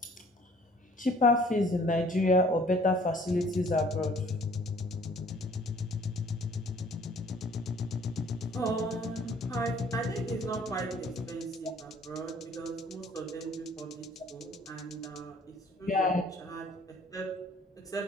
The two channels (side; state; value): both; normal; correlation 0.56